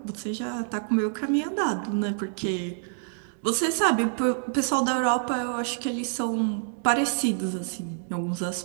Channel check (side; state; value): left; silent; 60 dB below the other